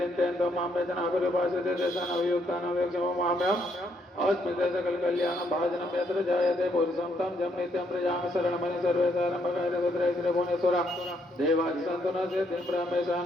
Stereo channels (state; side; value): normal; both; correlation 0.72